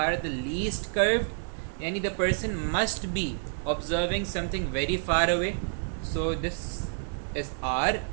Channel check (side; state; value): left; silent; digital silence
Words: the least curved. Yani the person must be observing something very far away. So this is R,